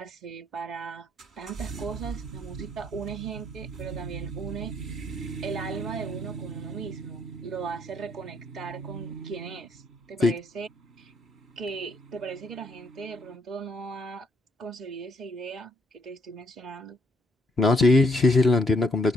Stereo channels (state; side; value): normal; both; correlation 0.70